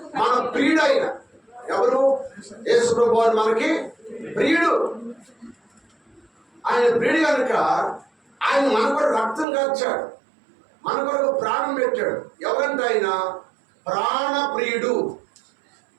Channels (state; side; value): drops out; left; at 9.5 s